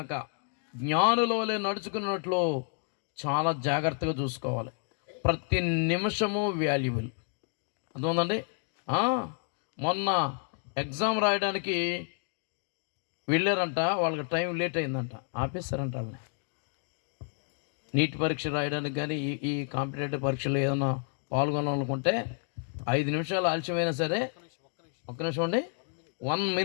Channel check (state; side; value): silent; right; 58 dB below the other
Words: జ్ఞానుల వలె నడుచుకున్నట్లు చాలా జాగ్రత్తగా చూసుకోవాలి. ప్రతి నిమిషము వాల్యుబుల్. అర్థమైందండి. మొన్న ఎగ్జామ్ రాయడానికి వెళ్ళారంట, వాళ్ళకి టైం లేట్ అయిందంట, ఆపేస్తారంట వాళ్ళని. నీట్ పరీక్ష రాయడానికి కానీ ఈ కాంపిటేటివ్ పరీక్షలు ఏదైనా పాల్గొనాలనుకుంటే 5 నిమిషాలు ఆలస్యమైనా సరే, ఒక్క నిమిషం అండి, 1